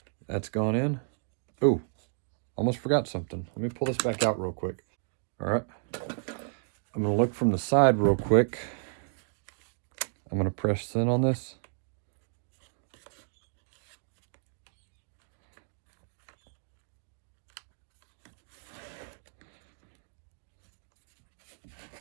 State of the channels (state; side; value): silent; left; digital silence